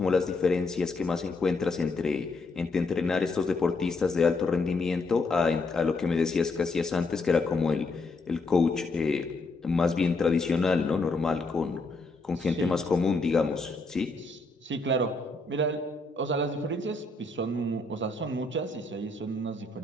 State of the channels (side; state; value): right; quieter; 3.4 dB